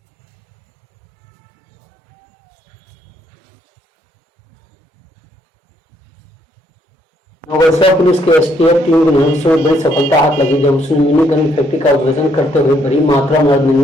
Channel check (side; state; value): both; normal; correlation 0.70